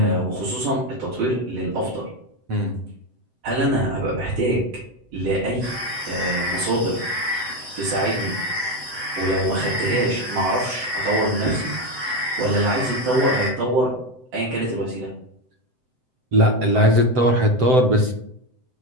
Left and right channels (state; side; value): late; left; 7.8 ms